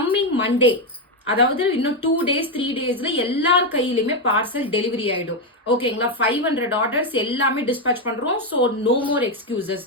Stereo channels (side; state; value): both; normal; correlation 0.06